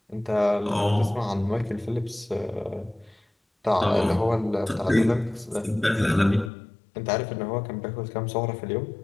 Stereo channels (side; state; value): right; drops out; at 6.5 s